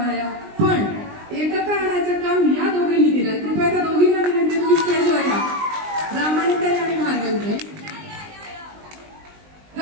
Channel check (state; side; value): late; left; 20 ms